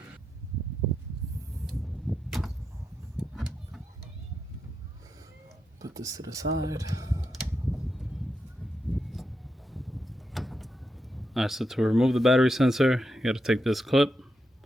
Put this to the side. Alright, so to remove the battery sensor, you gotta take this clip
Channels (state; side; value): normal; both; correlation 0.85